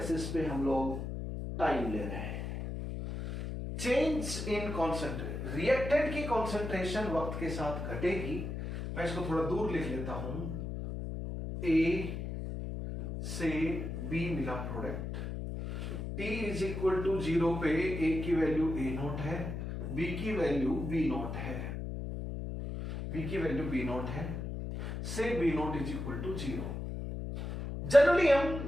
पे हम लोग टाइम ले रहे हैं। चेंज इन कॉन्सेंट्रेशन, रिएक्टेंट की कॉन्सेंट्रेशन वक्त के साथ घटेगी। मैं इसको थोड़ा दूर लिख लेता हूं। ए से बी मिला product, T is equal to 0 पे A की वैल्यू A नॉट है, B की वैल्यू B नॉट है, B की वैल्यू B नॉट है, say B naught is equal to 0। Generally हम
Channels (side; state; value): left; noise; hum, 5 dB below the sound